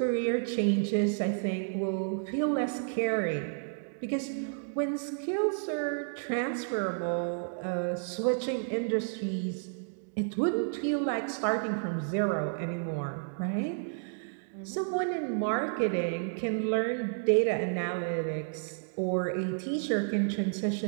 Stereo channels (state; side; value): silent; left; digital silence